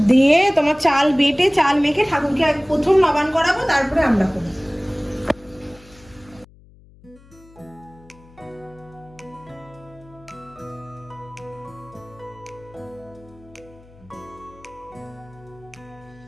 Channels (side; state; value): left; noise; hum, 25 dB below the sound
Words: দিয়ে তোমার চাল বেটে চাল মেখে ঠাকুরকে প্রথম নবান করাবো, তারপরে আমরা করবো।